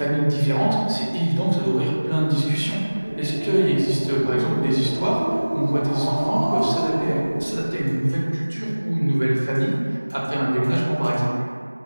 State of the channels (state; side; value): inverted; both; correlation -1.00